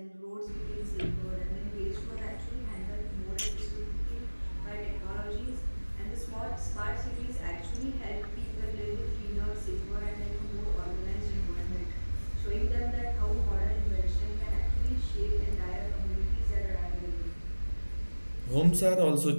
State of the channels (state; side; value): inverted; both; correlation -1.00